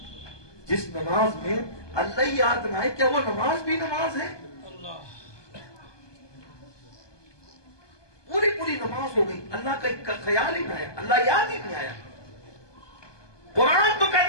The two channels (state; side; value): late; right; 1.2 ms